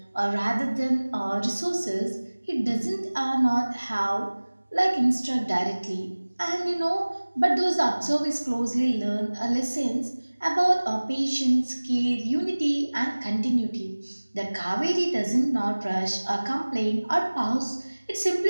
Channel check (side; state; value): both; inverted; correlation -1.00